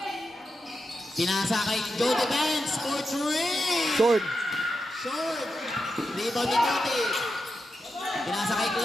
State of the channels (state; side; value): normal; both; correlation 0.88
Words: Pinasa kay Joe Defense for 3. Short. Short. Rebound ni Tuti. Pinasa kay